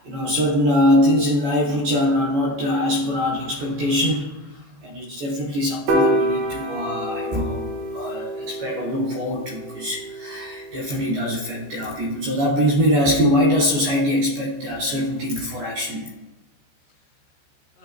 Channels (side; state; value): left; late; 14 ms